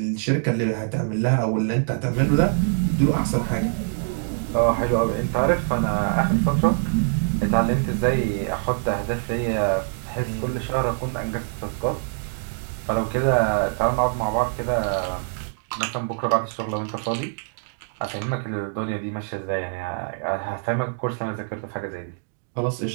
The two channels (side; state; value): left; silent; digital silence